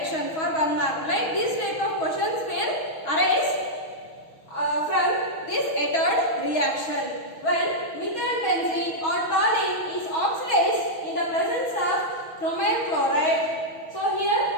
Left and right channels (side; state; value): right; late; 6.2 ms